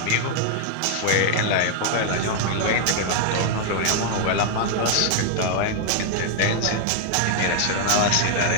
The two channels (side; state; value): both; different; correlation 0.00